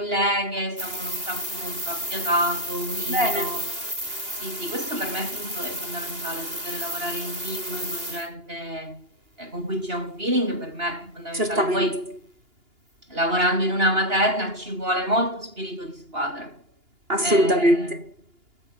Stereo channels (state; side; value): late; left; 2.9 ms